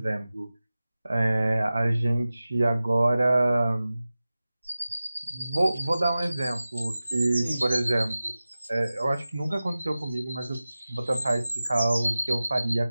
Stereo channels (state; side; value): inverted; both; correlation -0.96